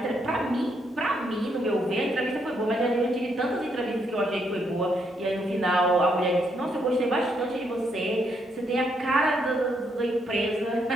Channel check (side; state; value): both; normal; correlation 0.75